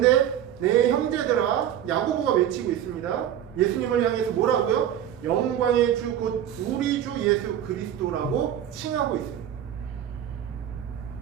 내 형제들아, 야고보가 외치고 있습니다. 예수님을 향해서 뭐라고요? 영광의 주 곧 우리 주 예수 그리스도라고 칭하고 있습니다.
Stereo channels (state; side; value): quieter; left; 10.5 dB